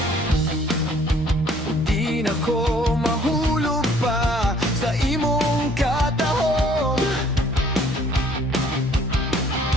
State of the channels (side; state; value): both; normal; correlation 0.59